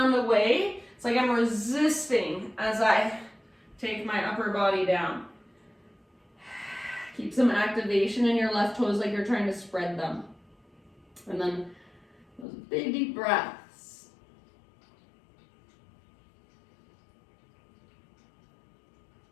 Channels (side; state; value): right; drops out; at 12.5 s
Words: away. It's like I'm resisting as I take my upper body down. Keep some activation in your left toes like you're trying to spread them. And then those big deep breaths.